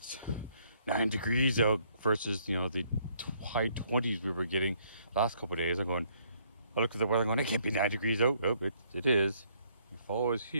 9 degrees out versus, you know, the high 20s we were getting last couple of days. I looked at the weather going, it can't be 9 degrees out. Oh, it is. The fall is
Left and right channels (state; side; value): inverted; both; correlation -0.67